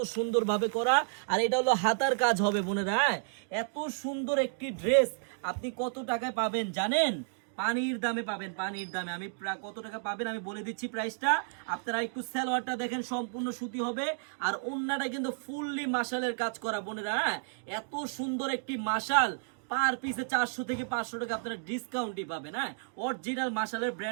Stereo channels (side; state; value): left; silent; digital silence